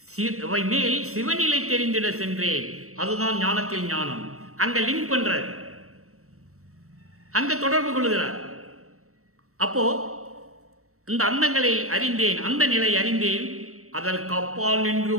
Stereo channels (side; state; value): left; late; 0.64 ms